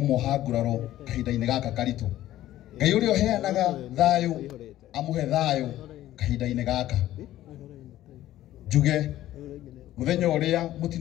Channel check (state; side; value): quieter; right; 14.0 dB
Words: nguraro kahinda-inĩ gaka karitũ. Ngai ũrĩa ũheanaga thayũ amũhe thayũ kahinda-inĩ gaka. Njuge mũthenya ũrĩa